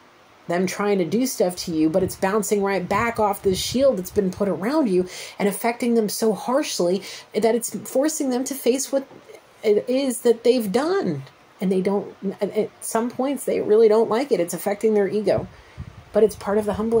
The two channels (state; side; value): identical; both; correlation 1.00